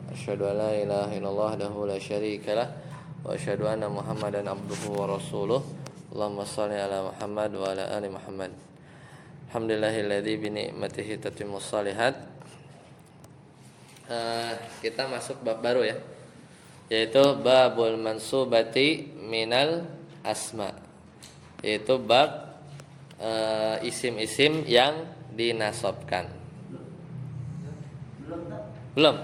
Asyhadu an la ilaha illallah wahdahu la syarikalah wa asyhadu anna Muhammadan abduhu wa rasuluh. Allahumma shalli ala Muhammad wa ala ali Muhammad. Alhamdulillahilladzi bi ni'matihi tatimmus shalihat. Kita masuk bab baru ya, yaitu babul mansubati minal asma, yaitu bab isim-isim yang dinasabkan. Belum?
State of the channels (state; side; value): identical; both; correlation 1.00